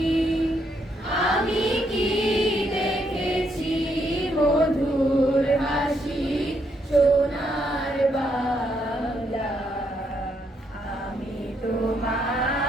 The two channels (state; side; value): normal; both; correlation 0.76